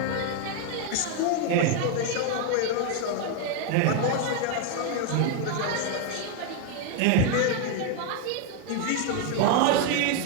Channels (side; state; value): both; different; correlation 0.01